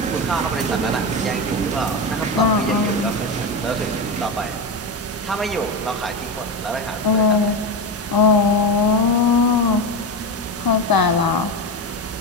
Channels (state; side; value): normal; both; correlation 0.17